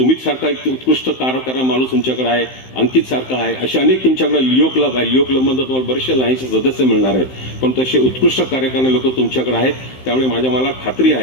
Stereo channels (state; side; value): late; right; 15 ms